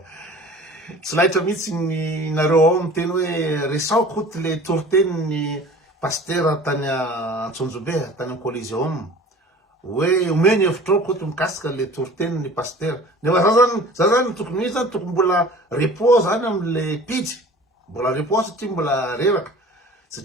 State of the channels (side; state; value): both; normal; correlation 0.44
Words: Tsy lahitra mihitsy ny nareo ao miteny hoe resao koty le toritenin'ny pasteur tany Antsonjobe, tany Coliseum. Hoe omeny hevitrao koty mikasika le toritenin'ny pasteur. Nefa za zany tokony zany tokony mbola repos zany amle pitsy. Mbola repos satria mbola reraka.